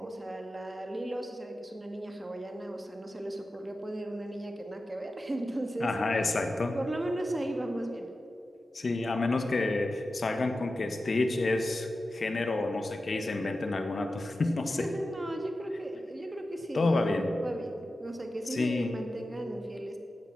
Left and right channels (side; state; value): both; normal; correlation 0.93